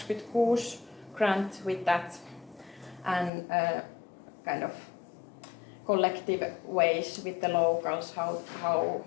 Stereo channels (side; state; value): right; drops out; at 3.3 s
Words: grant with that, and kind of collective ways with the locals,